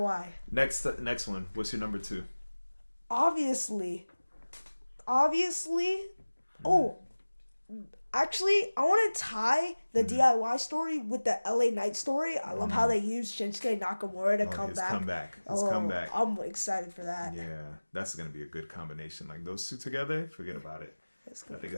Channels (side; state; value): both; inverted; correlation -1.00